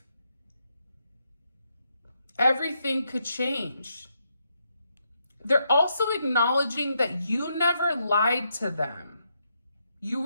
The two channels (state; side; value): inverted; both; correlation -0.79